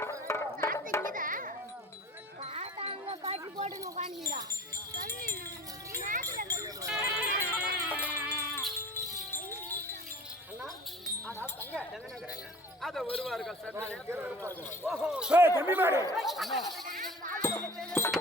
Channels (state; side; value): normal; both; correlation 0.42